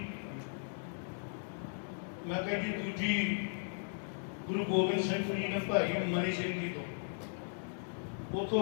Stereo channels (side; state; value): right; silent; digital silence